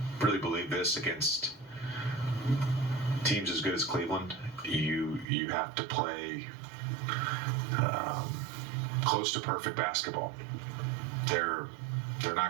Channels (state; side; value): drops out; left; at 5.2 s